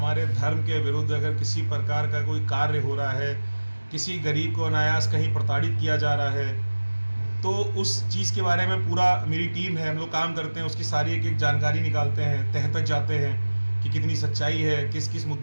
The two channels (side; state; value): both; inverted; correlation -1.00